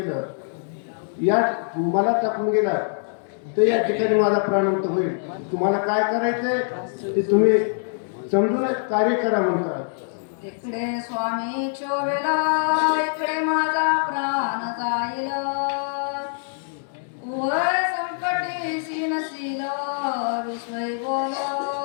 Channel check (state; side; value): silent; right; digital silence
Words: या मला टाकून गेला तर या ठिकाणी माझा प्राणांत होईल. तुम्हाला काय करायचंय ते तुम्ही समजून कार्य करा म्हणतात. इकडे स्वामी शोभेला, इकडे माझा प्राण जाईल. उभय संकटीशी नशील, विश्वय बोल